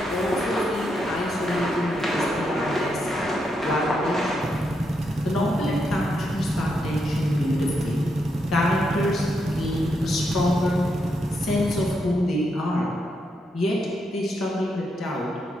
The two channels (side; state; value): both; normal; correlation 0.81